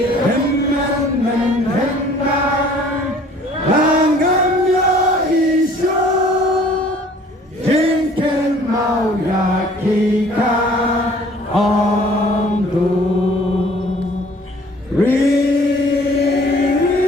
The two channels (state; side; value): normal; both; correlation 0.54